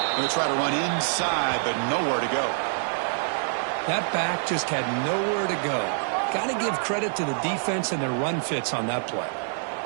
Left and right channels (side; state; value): left; silent; 61 dB below the other